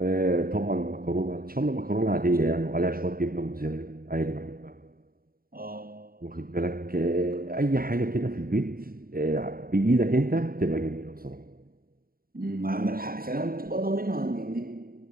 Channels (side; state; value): left; late; 0.43 ms